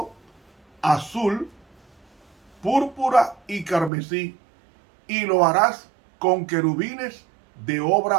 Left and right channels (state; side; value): drops out; left; at 3.9 s